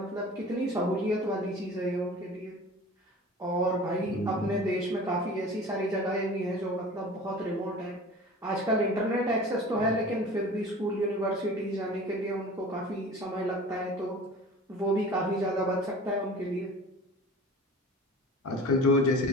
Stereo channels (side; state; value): both; normal; correlation 0.40